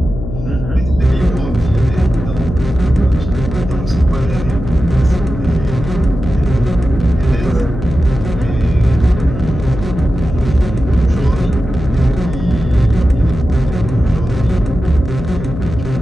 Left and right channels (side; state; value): left; noise; hum, 8 dB below the sound